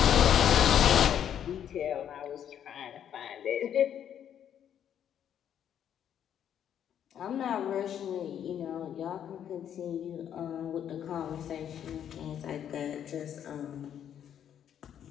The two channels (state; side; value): quieter; right; 9.5 dB